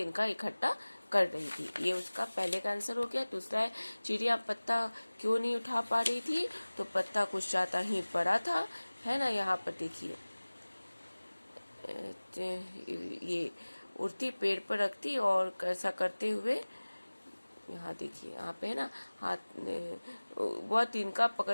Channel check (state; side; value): inverted; both; correlation -1.00